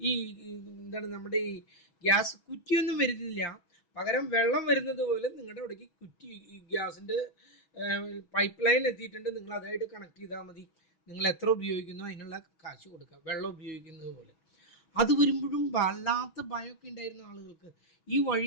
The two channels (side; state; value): right; late; 6.2 ms